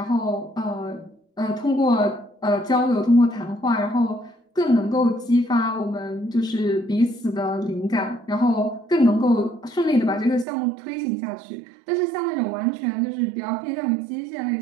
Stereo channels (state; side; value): drops out; left; at 10.5 s